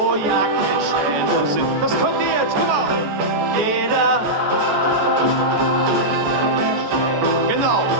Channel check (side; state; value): left; late; 14 ms